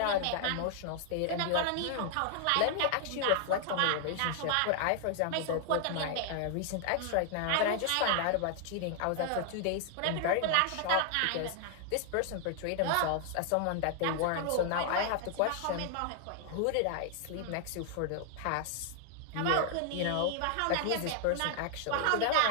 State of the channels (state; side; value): different; both; correlation 0.00